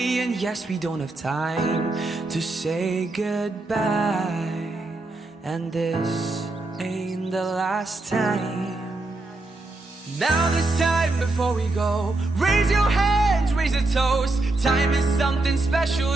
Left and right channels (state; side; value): quieter; left; 3.1 dB